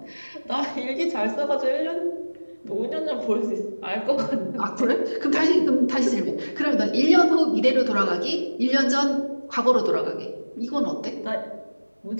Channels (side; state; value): both; inverted; correlation -1.00